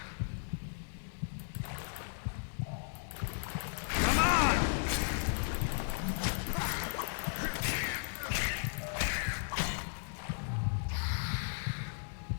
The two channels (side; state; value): right; silent; digital silence